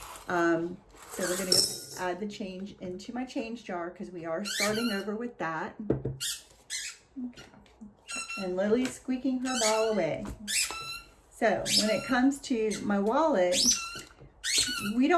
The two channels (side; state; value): both; identical; correlation 1.00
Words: So we're going to add the change into my change jar because we are starting over with that. Okay. And Lily's squeaking her ball away. So when it comes to my wallet, we